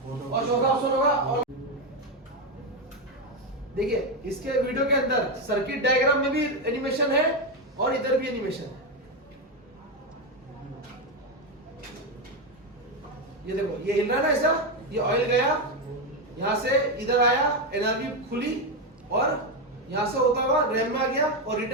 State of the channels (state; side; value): normal; both; correlation 0.08